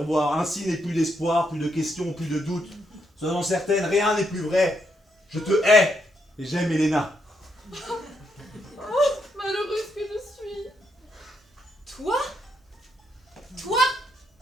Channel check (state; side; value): normal; both; correlation 0.78